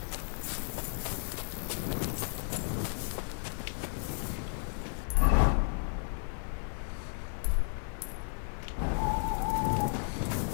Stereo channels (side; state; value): right; silent; digital silence